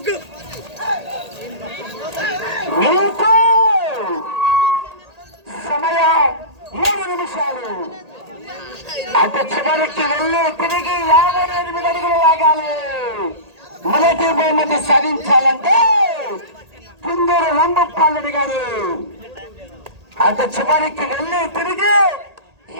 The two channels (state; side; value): late; left; 1.8 ms